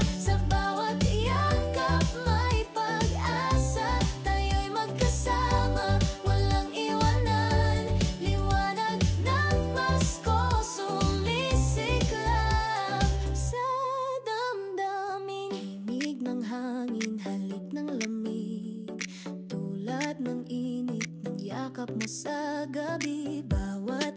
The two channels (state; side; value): identical; both; correlation 1.00